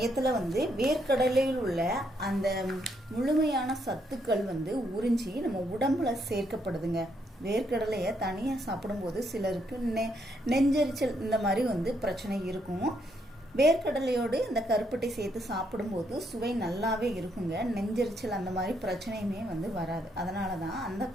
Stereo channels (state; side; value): normal; both; correlation 0.75